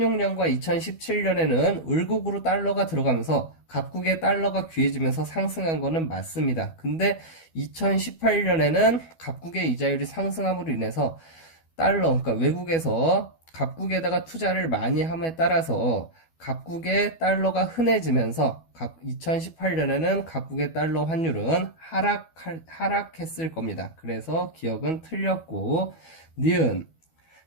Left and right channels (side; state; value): right; late; 12 ms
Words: 2017년에는 을국으로 달러가 들어가면서 각국의 달러가 귀해지면서 상승한 거는 맞습니다. 근데 2018년에는 각국의 이자율이 상승함으로 인해서 그러니까 외국에서 각국에다가 투자를 많이 함에 따라서 각국의 달러가 흔해지면서 2018년에는 각국의 달러 환율은 하락했을 겁니다. 그래서 기억은 틀렸고, 니은